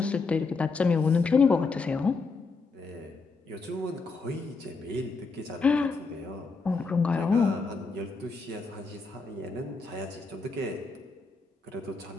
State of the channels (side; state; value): right; quieter; 4.2 dB